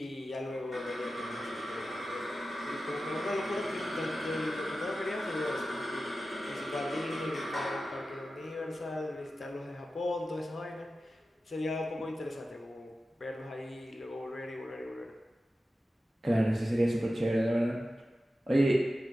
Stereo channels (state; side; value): normal; both; correlation 0.93